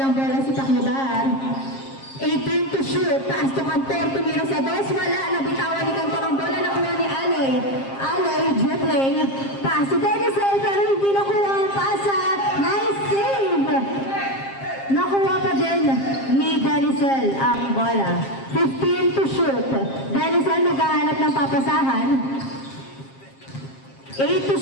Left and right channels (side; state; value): right; late; 7.5 ms